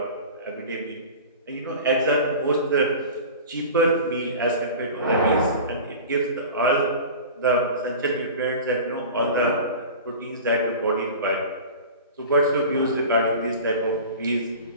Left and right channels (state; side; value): inverted; both; correlation -0.35